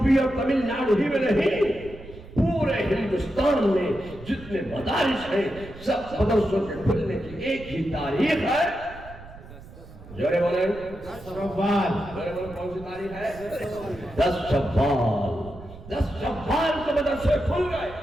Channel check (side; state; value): right; noise; rumble, 17 dB below the sound